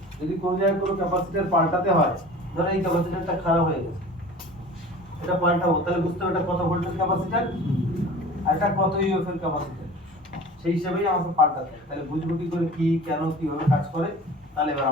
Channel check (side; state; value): both; normal; correlation 0.41